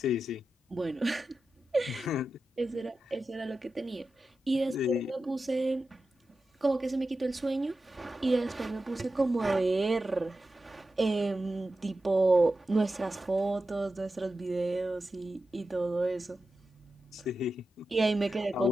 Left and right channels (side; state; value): both; normal; correlation 0.92